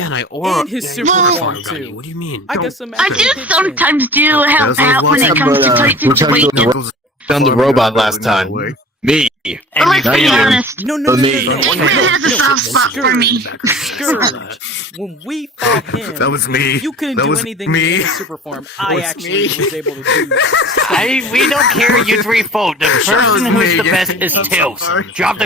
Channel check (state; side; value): normal; both; correlation 0.41